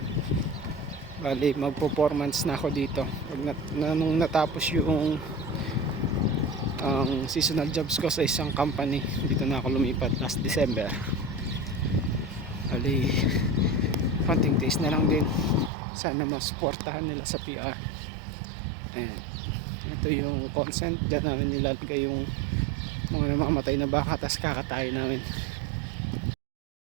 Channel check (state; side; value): drops out; left; at 15.7 s